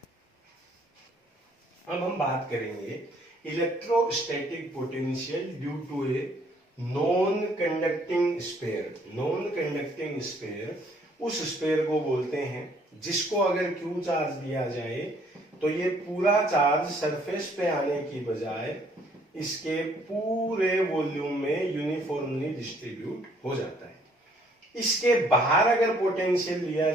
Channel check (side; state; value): both; normal; correlation 0.63